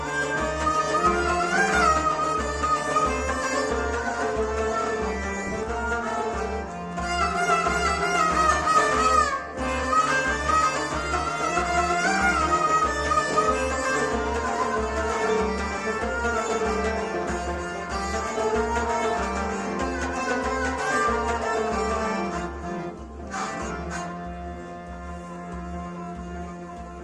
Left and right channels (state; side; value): identical; both; correlation 1.00